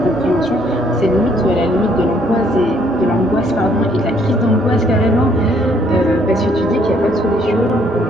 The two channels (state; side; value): normal; both; correlation 0.66